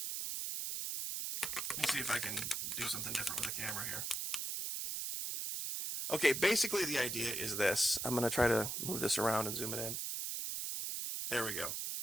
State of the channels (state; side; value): noise; right; hiss, 2 dB below the sound